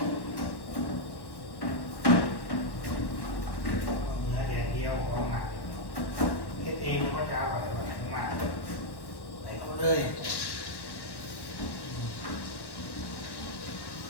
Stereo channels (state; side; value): late; right; 1.1 ms